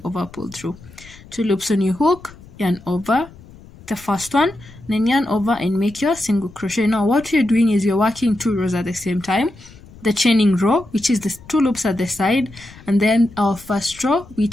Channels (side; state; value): left; noise; rumble, 21 dB below the sound